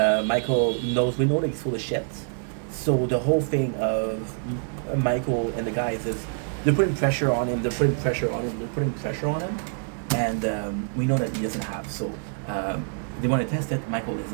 Michael knows we know that he's full of shit, so the whole thing of Michael and the guys is they're putting pressure on him. They're putting pressure on him. They're putting pressure on him, and we know that he doesn't have. So they want to test it. Michael is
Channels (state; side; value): silent; left; 61 dB below the other